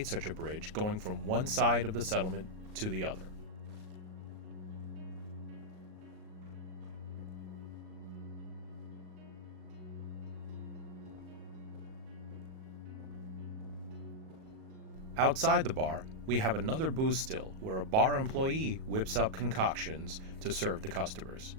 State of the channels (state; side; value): late; left; 38 ms